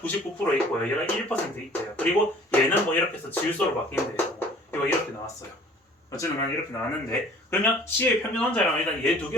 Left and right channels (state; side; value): normal; both; correlation 0.51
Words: 있고요. 얘가 1% 있대요. 그리고 얘는 뭐 이렇게 해서 질소로 바뀐대요. 이거 이렇게 나왔어요. 어쨌든 난 이렇게 나왔는데 그러면 C의 평균 원자량은 일단 얘 두